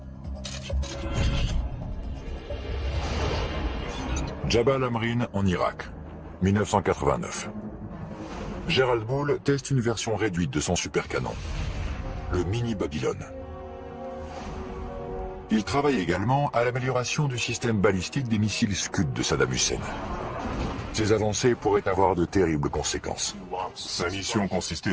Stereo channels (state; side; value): identical; both; correlation 1.00